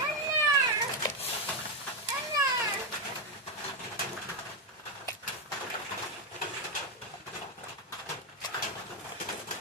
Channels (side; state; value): both; normal; correlation 0.05